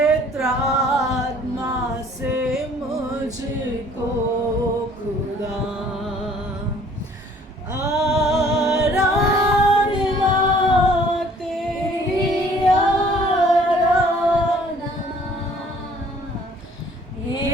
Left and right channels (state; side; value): normal; both; correlation 0.56